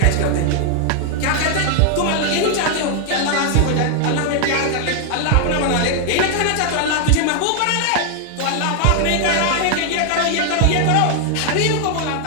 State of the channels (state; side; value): different; both; correlation 0.00